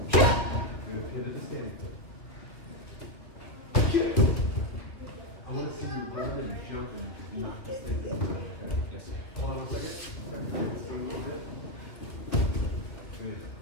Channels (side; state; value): right; late; 2.8 ms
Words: I want to see you run and jump and knock this thing down. Okay? Yes, sir. Hold on 1 second. Back to this thing a little bit. Good.